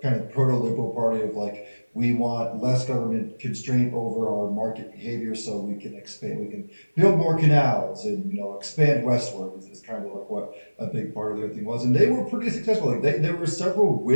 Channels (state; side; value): inverted; both; correlation -1.00